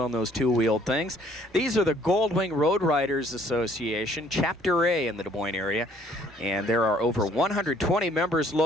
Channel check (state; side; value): normal; both; correlation 0.61